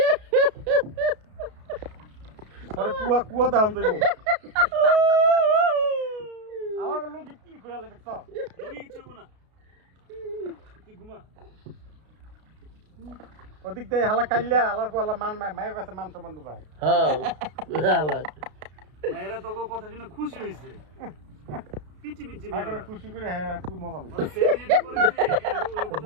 আরে কুয়া কুয়া দাম যাইবো আমার লুঙ্গি কি কইলা দেখছ লুঙ্গি কিছু না তুই ঘুমা ওদিক দিয়ে হালা কাইলা হালার পর হালা মান মায়ের কাছে মান সম্মান পায় হ্যাঁ হালা মায়েরা তোকে কথা শুনে খুশি হইছে পিটি পিটি মায়ের খুশি করে হ্যাঁ খুব মজা ওই পাইছে সেদিন করেছে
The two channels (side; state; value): left; late; 33 ms